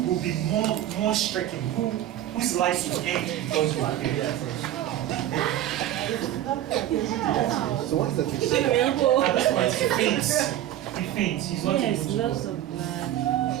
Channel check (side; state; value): left; quieter; 12.6 dB